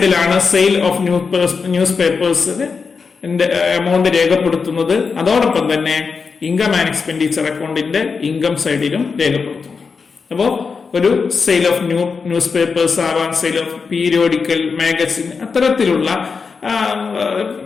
sale of news papers amount രേഖപ്പെടുത്തുന്നത്. അതോടൊപ്പം തന്നെ ഇൻകം ആൻഡ് എക്സ്പെൻഡിച്ചർ അക്കൗണ്ടിന്റെ ഇൻകം സൈഡിലും രേഖപ്പെടുത്തുന്നു. അപ്പോ ഒരു സെയിൽ ഓഫ് ന്യൂസ് പേപ്പേഴ്സ് ആവാം, സെയിൽ ഓഫ് പീരിയോഡിക്കൽ, മാഗസിൻ, അത്തരത്തിലുള്ള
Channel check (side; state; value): right; quieter; 5.2 dB